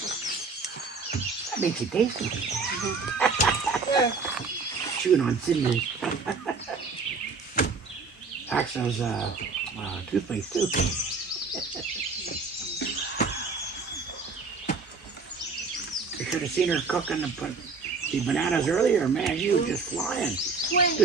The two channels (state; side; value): quieter; left; 4.5 dB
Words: That makes it tasty. Yeah. Chewing on cinnamon. Axel's toothpaste too. You should have seen her cooking the bananas earlier. Man, she was just flying.